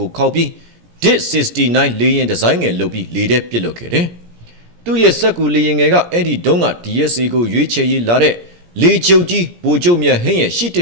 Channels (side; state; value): left; late; 17 ms